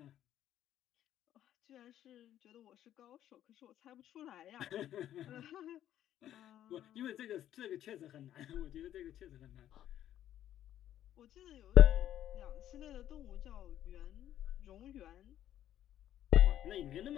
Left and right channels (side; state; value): right; quieter; 11.6 dB